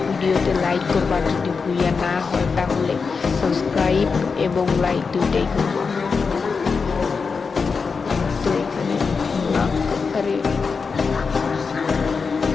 ভিডিওতে লাইক করবা, যদি ভুইয়া না হয় তাহলে সাবস্ক্রাইব এবং লাইক দুইটাই করবা। তো এখানে আরে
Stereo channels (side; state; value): right; quieter; 5.1 dB